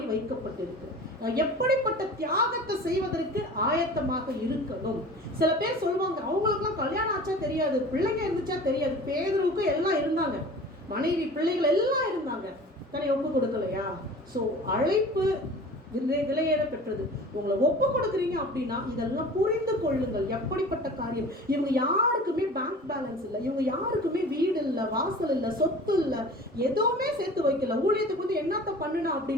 வைக்கப்பட்டிருக்கு, எப்படிப்பட்ட தியாகத்தை செய்வதற்கு ஆயத்தமாக இருக்கணும். சில பேர் சொல்லுவாங்க, அவங்களுக்குலாம் கல்யாணம் ஆச்சா தெரியாது, பிள்ளைங்க இருந்துச்சா தெரியாது. பேதுருவுக்கு எல்லாம் இருந்தாங்க, மனைவி பிள்ளைகள் எல்லாம் இருந்தாங்க, தன்னை ஒப்பு கொடுக்கலையா? ஸோ அழைப்பு விலையேற பெற்றது. உங்களை ஒப்பு கொடுக்குறீங்க அப்படின்னா இதெல்லாம் புரிந்து கொள்ளுங்கள். எப்படிப்பட்ட காரியம். இவங்க யாருக்குமே பேங்க் பேலன்ஸ் இல்லை, இவங்க யாருக்குமே வீடு இல்லை, வாசல் இல்லை, சொத்து இல்லை, எதுவுமே சேர்த்து வைக்கல. ஊழியத்துக்கு வந்து என்னத்த பண்ணுனா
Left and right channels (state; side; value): normal; both; correlation 0.41